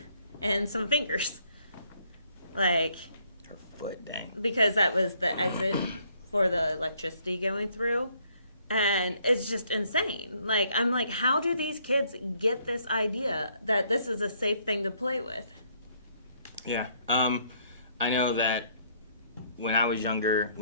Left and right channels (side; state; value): both; inverted; correlation -0.67